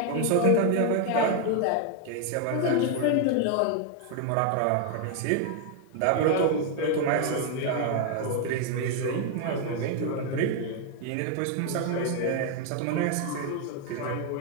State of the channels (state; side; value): different; both; correlation 0.00